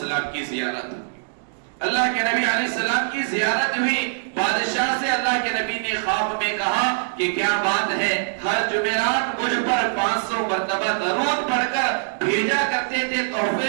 کی زیارت، اللہ کے نبی علیہ السلام کی زیارت ہوئی. بادشاہ سے اللہ کے نبی نے خواب میں کہا کہ کیا بات ہے، ہر جمعرات مجھ پر 500 مرتبہ درود پڑھ کر بھیجا کرتے تھے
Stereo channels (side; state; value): left; silent; digital silence